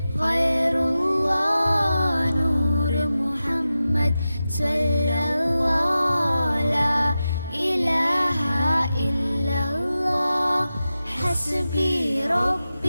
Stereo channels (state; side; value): inverted; both; correlation -0.93